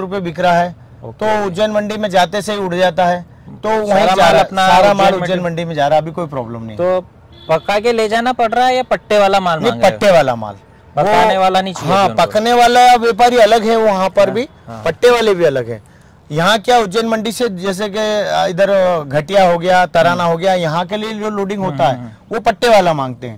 बिक रहा है। तो उज्जैन मंडी में जाते से ही उड़ जाता है, तो वहीं सारा माल उज्जैन मंडी में जा रहा है। अभी कोई प्रॉब्लम नहीं। तो पका के ले जाना पड़ रहा है या पट्टे वाला माल? नहीं, पट्टे वाला माल। पकाने वाला नहीं चाहिए? हाँ, पकने वाला व्यापारी अलग है वहाँ पर भी, पट्टे वाले भी अलग है। यहाँ क्या उज्जैन मंडी से जैसे कि इधर घटिया हो गया, तराना हो गया, यहाँ के लिए जो लोडिंग होता है वो पट्टे वाला मांगते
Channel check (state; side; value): identical; both; correlation 1.00